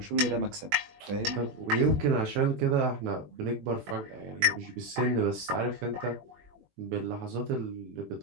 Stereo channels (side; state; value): left; late; 21 ms